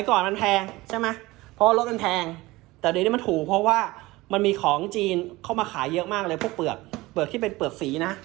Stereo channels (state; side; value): quieter; left; 20.1 dB